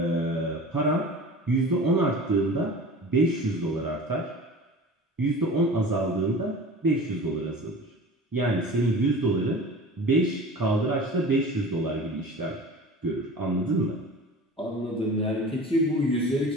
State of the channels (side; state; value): both; normal; correlation 0.37